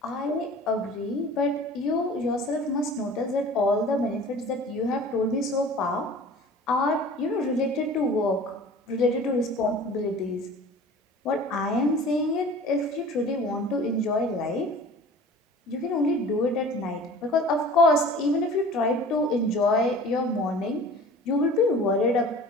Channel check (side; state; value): both; normal; correlation 0.43